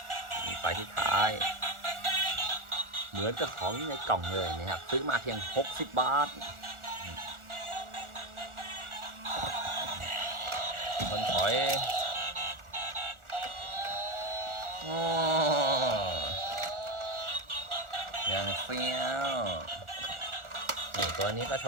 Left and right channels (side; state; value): left; late; 1.4 ms